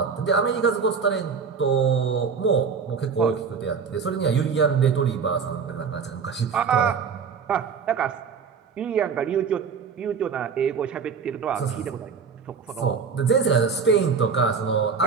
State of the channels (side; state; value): left; quieter; 5.9 dB